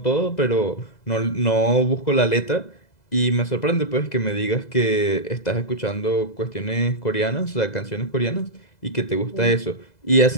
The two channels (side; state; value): right; late; 2.0 ms